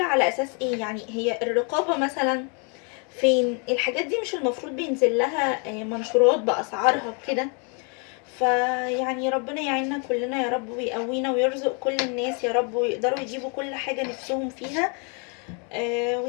على اساس ايه. يعني هي الرقابه مثلا فين؟ الحاجات دي مش المفروض بينزل لها منشورات باسعارها وكده؟ فيعني ربنا يعيننا كلنا يا رب، ويقوينا ويرزق كل الناس يا رب، ويقدروا يجيبوا كل حاجه نفسهم فيها.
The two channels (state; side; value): quieter; right; 36.5 dB